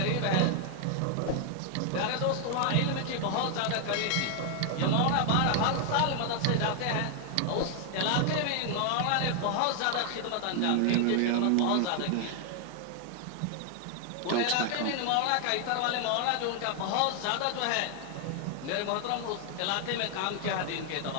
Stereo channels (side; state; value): both; different; correlation 0.00